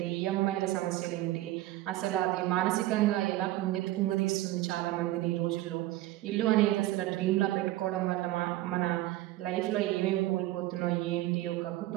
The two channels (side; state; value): left; quieter; 16.3 dB